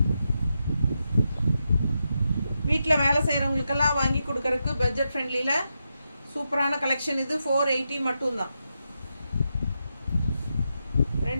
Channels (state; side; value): inverted; both; correlation -0.86